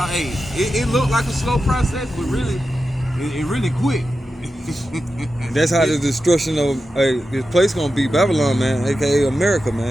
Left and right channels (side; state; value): both; normal; correlation 0.91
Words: it looked like a slow process, but really, it really quick. That's how the destruction of this place gonna be, Babylon, man, aka America,